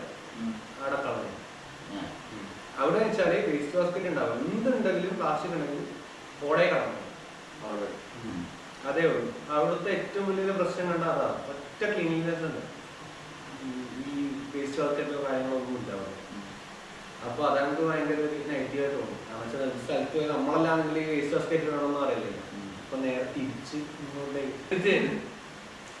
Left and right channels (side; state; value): both; identical; correlation 1.00